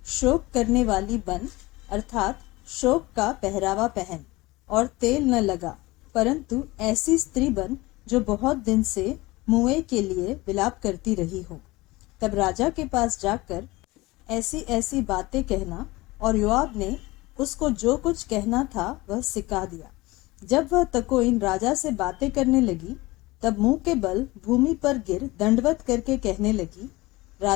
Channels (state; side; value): quieter; right; 21.0 dB